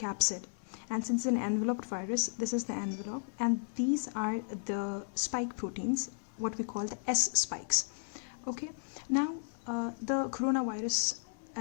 And since it's an enveloped virus, this is the envelope. And these are the spike proteins, what we call the S spikes. Okay. Now, the coronavirus,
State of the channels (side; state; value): right; silent; 55 dB below the other